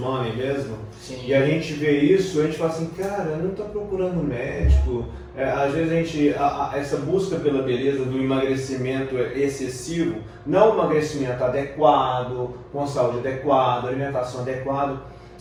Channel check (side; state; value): both; identical; correlation 1.00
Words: mesmo. Sim. E a gente vê isso, a gente fala assim, cara, não está procurando médico. Às vezes essa busca pela beleza do emagrecimento excessivo, não o emagrecimento adequado, com saúde adequada, alimentação adequada,